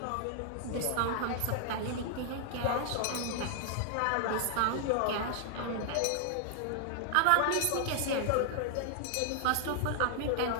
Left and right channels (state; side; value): different; both; correlation 0.00